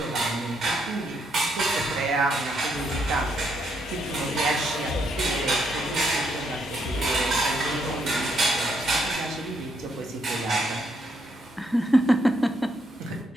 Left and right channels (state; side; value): normal; both; correlation 0.75